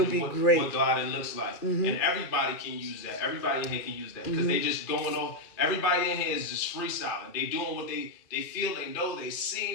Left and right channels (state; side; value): late; right; 2.4 ms